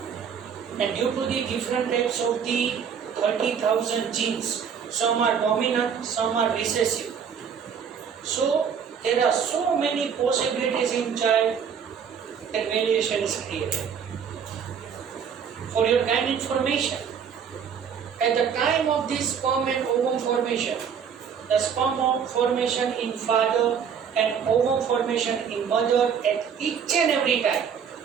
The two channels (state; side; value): quieter; left; 7.3 dB